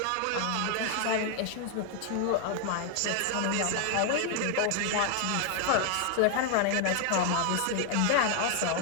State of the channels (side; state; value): both; different; correlation 0.00